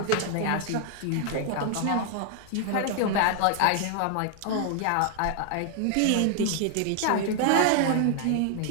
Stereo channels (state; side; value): different; both; correlation 0.00